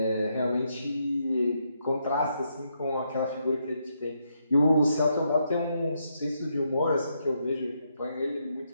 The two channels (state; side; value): inverted; both; correlation -0.79